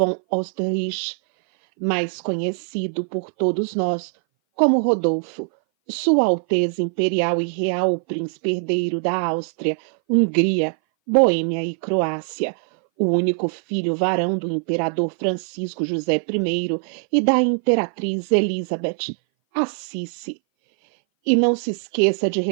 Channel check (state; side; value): silent; left; 59 dB below the other